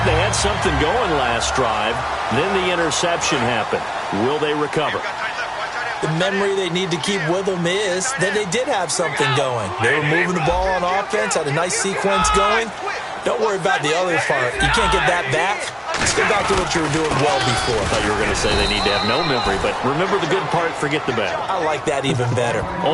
they had something going last drive. Then the interception happened. Will they recover? The memory they need to keep with them is that they did have something going. They were moving the ball on offense, had a nice sequence going. Don't worry about the other part. You can't get that back. Let's get back to what you were doing well before. I thought you were going to say they need to have no memory, but remember the good part, forget the bad. I like that even better.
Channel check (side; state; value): both; identical; correlation 1.00